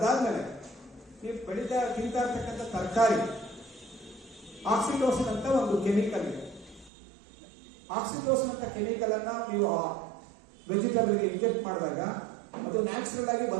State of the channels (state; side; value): drops out; left; at 6.9 s